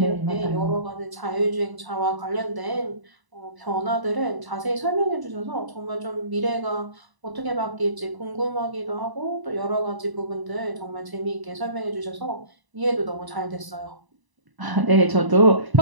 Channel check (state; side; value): late; left; 1.0 ms